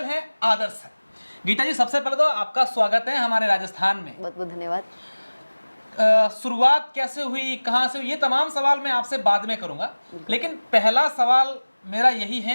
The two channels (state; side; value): inverted; both; correlation -1.00